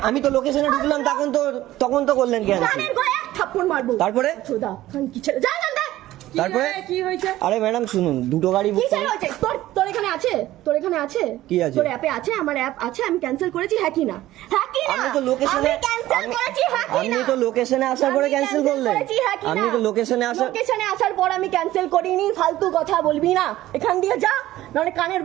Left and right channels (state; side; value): quieter; left; 15.3 dB